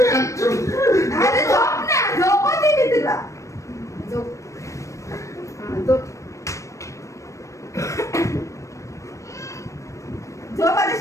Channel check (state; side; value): late; right; 0.15 ms